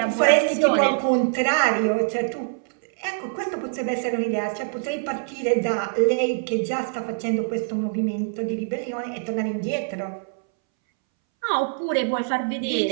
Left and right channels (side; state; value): left; silent; 63 dB below the other